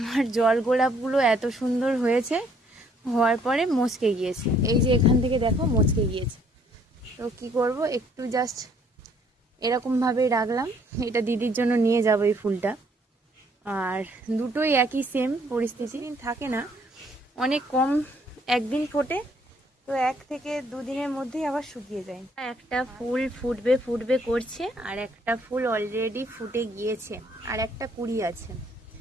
জল গোলাপগুলো এত সুন্দর হয়েছে, হওয়ার পরে মচকে গিয়েছে। এই যে এখান থেকে দেখো মচকে গিয়েছে। তো কি করব, একটু জাস্ট এরকমভাবেই রাখলাম। এটা দিদির জন্য নিয়ে যাবো এই ফুলটা। আর দুটোই একই সেম পরিস্থিতি, থাকে না, অনেক কম একদিন ফোটে, তো 1 থেকে 2 দিনের মধ্যেই আবার শুকিয়ে যায়। একটা ফুল ফুটবে ফুটবে করছে, আর একটা ফুল অলরেডি ফুটে গিয়েছে, আর একটা কুড়ি আছে।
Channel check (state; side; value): normal; both; correlation 0.65